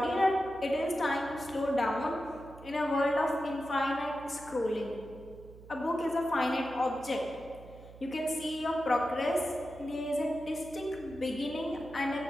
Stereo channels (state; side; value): noise; right; hum, 18 dB below the sound